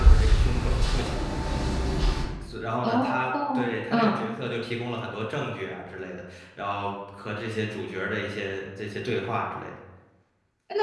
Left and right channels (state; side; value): identical; both; correlation 1.00